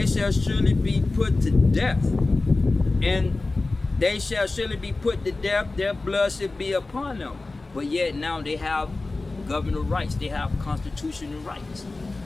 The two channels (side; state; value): right; quieter; 3.3 dB